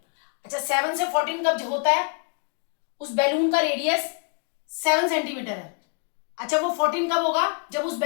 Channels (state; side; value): quieter; right; 37.3 dB